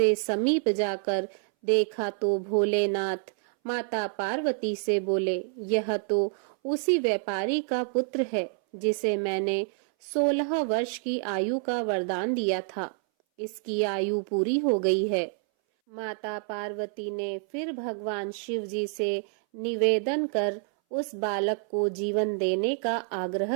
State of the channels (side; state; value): left; silent; 59 dB below the other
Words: समीप जाकर देखा तो भोलेनाथ माता पार्वती से बोले, यह तो उसी व्यापारी का पुत्र है जिसे मैंने 16 वर्ष की आयु का वरदान दिया था। इसकी आयु पूरी हो गई है। माता पार्वती ने फिर भगवान शिव जी से निवेदन कर उस बालक को जीवन देने का